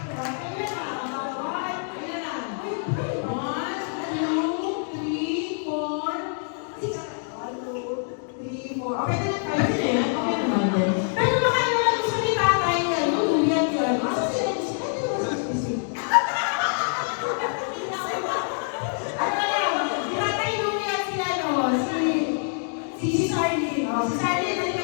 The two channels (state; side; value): silent; right; 61 dB below the other